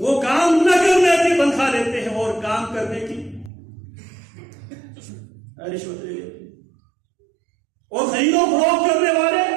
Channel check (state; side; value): drops out; left; at 3.5 s